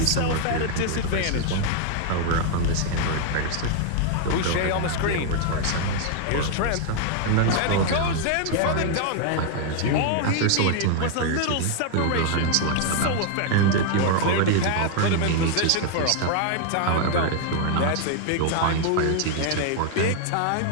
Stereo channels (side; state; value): both; different; correlation 0.00